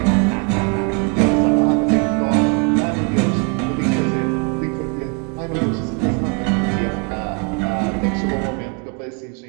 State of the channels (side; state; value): left; quieter; 35.2 dB